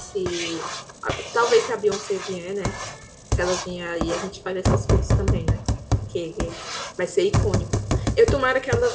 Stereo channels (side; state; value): both; identical; correlation 1.00